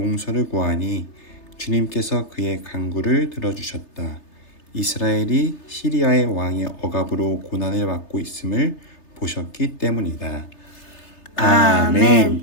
구하니 주님께서 그의 간구를 들어주셨다. 이스라엘이 시리아의 왕의 억압으로 고난을 받고 있음을 보셨기 때문이다.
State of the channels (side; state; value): right; late; 3.3 ms